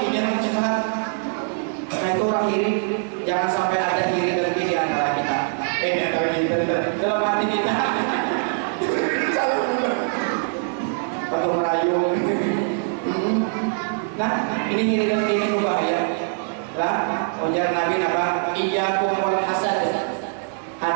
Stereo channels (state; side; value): silent; left; 64 dB below the other